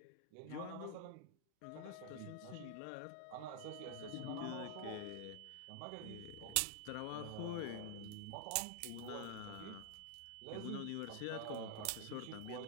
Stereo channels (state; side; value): different; both; correlation 0.00